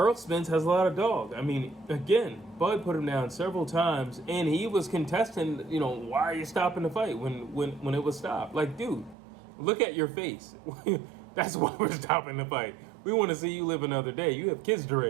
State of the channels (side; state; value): left; drops out; at 9.2 s